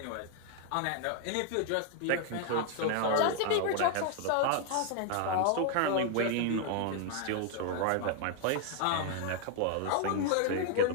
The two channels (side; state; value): both; different; correlation 0.00